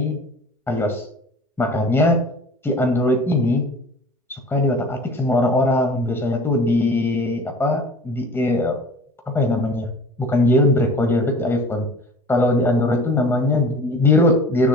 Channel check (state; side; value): normal; both; correlation 0.43